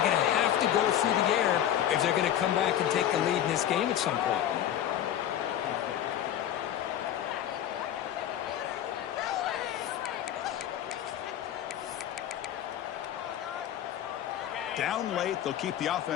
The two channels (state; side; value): quieter; right; 11.0 dB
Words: going to have to go through the air if they're going to come back and take the lead in this game at some point. Down late, they'll keep the